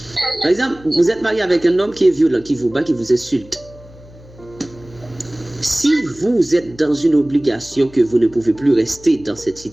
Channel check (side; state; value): left; noise; hum, 22 dB below the sound